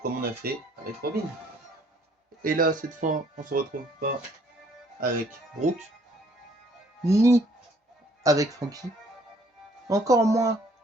comme on a fait avec Robin. Et là cette fois on se retrouve pas avec Brook, ni avec Franky, encore moins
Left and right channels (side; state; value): both; normal; correlation 0.62